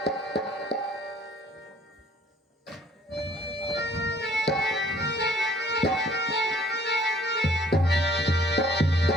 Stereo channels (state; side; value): normal; both; correlation 0.57